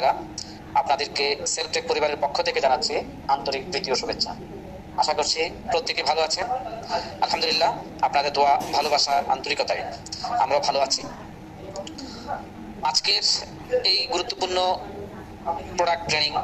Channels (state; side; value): identical; both; correlation 1.00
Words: আপনাদেরকে সেলফ টেক পরিবারের পক্ষ থেকে জানাচ্ছি আন্তরিক প্রীতি ও শুভেচ্ছা। আশা করছি প্রত্যেকে ভালো আছেন। আলহামদুলিল্লাহ, আপনাদের দোয়া, ভালোবাসা, আন্তরিকতায় আমরাও ভালো আছি। আজকের এই গুরুত্বপূর্ণ প্রোডাক্ট ট্রেনিং